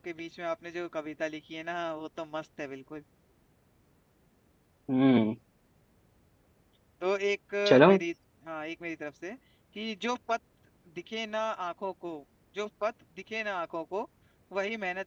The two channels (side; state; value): both; identical; correlation 1.00